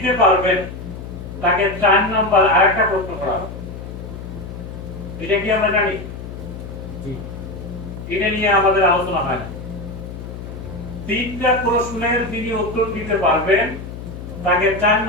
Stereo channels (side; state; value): left; noise; hum, 10 dB below the sound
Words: পারবেন তাকে 4 নাম্বার আরেকটা প্রশ্ন করা হবে। এটা কি আমরা জানি? এটা নিয়ে আমাদের আলোচনা হয় না। তিনটা প্রশ্নের যিনি উত্তর দিতে পারবেন তাকে 4